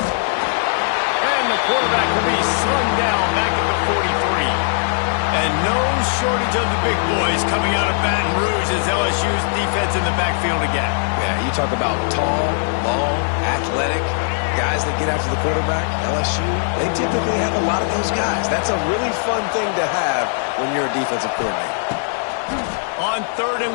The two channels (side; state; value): right; silent; digital silence